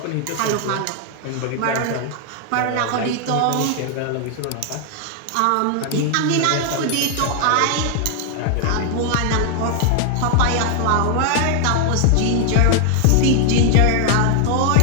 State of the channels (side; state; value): both; different; correlation 0.00